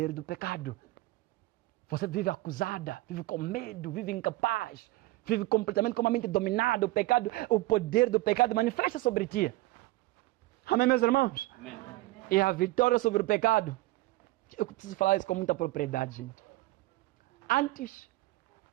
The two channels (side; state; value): left; quieter; 19.3 dB